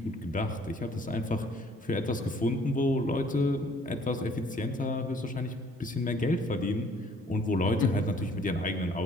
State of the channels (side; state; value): both; normal; correlation 0.59